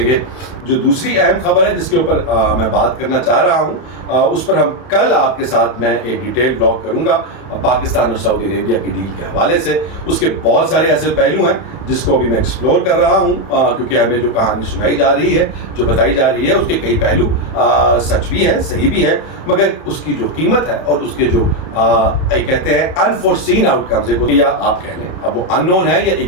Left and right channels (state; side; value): late; right; 31 ms